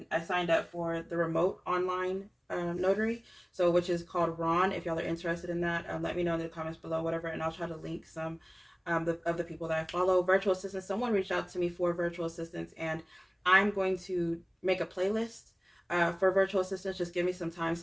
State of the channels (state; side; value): identical; both; correlation 1.00